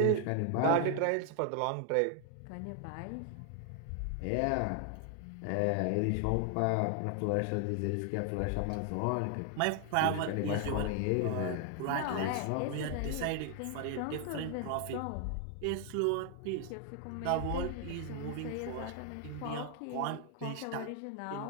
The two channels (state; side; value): different; both; correlation 0.00